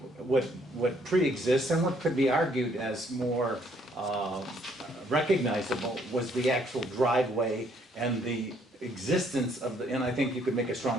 What pre-exists and what could be argued as more recognizable was the actual driveway and the existence of and I think you could make a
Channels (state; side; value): normal; both; correlation 0.67